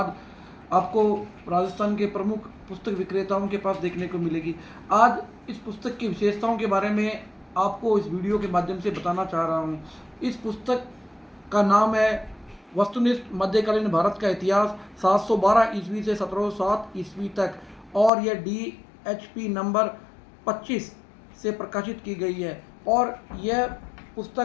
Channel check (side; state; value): right; drops out; at 18.1 s